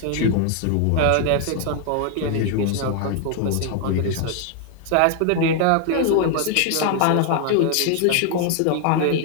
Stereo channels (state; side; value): different; both; correlation 0.00